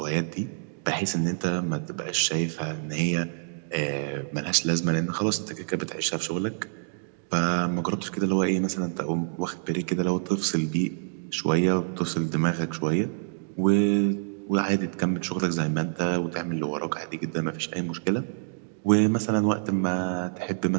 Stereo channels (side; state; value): left; silent; digital silence